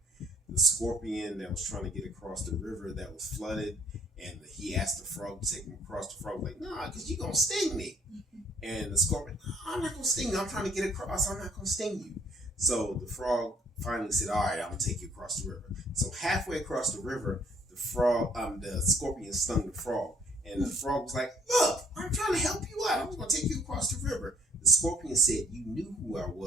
scorpion that was trying to get across the river that was flooded, and he asked the frog to take him across. The frog was like, "Nah, because you're gonna sting me." And the scorpion, "I'm not gonna sting you. I'm trying to get across. I'm not gonna sting you." So the frog finally said, "All right, I'm gonna take you across the river." So halfway across the river, the scorpion stung the frog, and the frog was like, "Look, I'm trying to help you out. I'm gonna take you across the river." The scorpion said, "You knew who I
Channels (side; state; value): both; normal; correlation 0.61